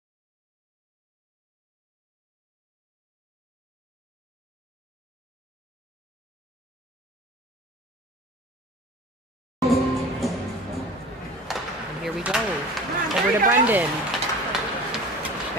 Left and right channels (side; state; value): both; normal; correlation 0.39